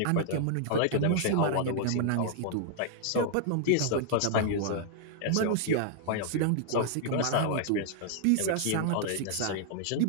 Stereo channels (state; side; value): different; both; correlation -0.01